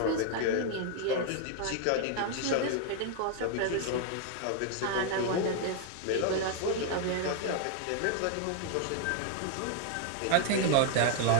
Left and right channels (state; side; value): different; both; correlation 0.00